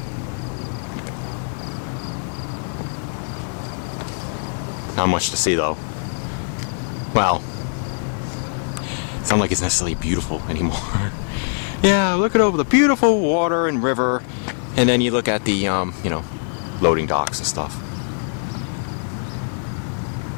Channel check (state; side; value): silent; right; digital silence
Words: Not much to see though. Well, it's not like it's necessarily beautiful anymore. Yeah, look at over the beautiful water and river, and then you look at the, you know, loading docks and stuff.